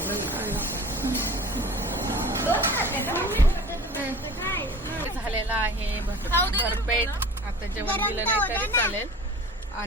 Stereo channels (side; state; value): both; normal; correlation 0.41